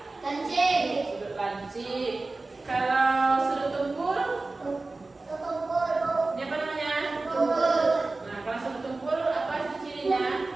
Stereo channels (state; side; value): quieter; left; 3.4 dB